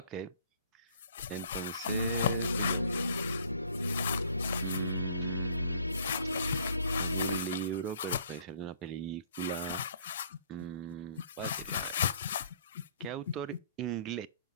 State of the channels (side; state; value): both; inverted; correlation -0.60